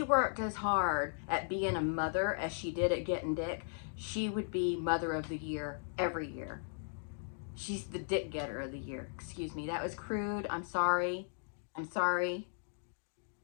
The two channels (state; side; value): silent; right; digital silence